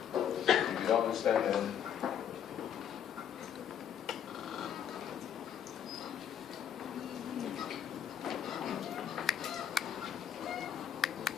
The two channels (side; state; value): right; quieter; 9.0 dB